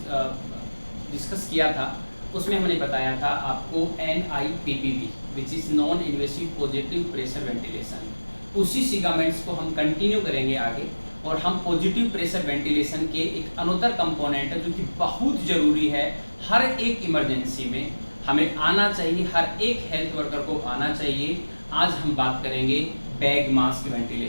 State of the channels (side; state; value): both; inverted; correlation -1.00